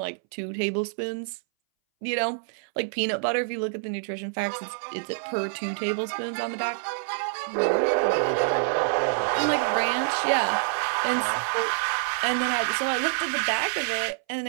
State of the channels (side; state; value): left; silent; 60 dB below the other